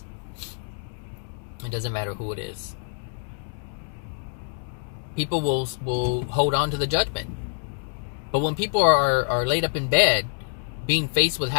It doesn't matter who it is. People will hold on to the judgment. But when people are laid up in bed, being faced with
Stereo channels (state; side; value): silent; right; digital silence